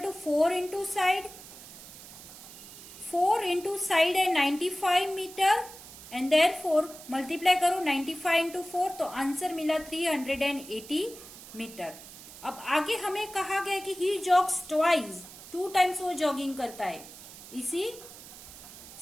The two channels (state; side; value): noise; right; hiss, 16 dB below the sound